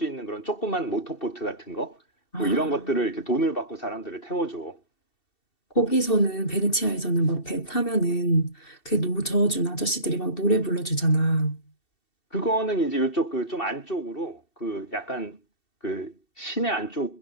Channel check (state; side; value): late; right; 2.7 ms